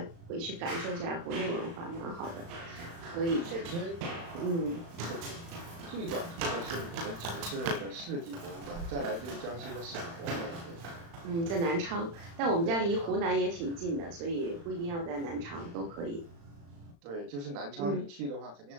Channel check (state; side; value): late; left; 35 ms